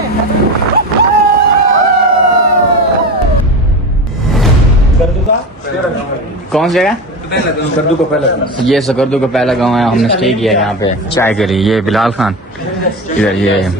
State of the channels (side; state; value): both; normal; correlation 0.25